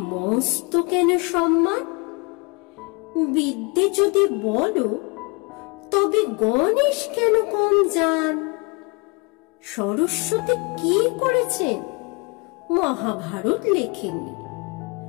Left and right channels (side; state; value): right; quieter; 29.5 dB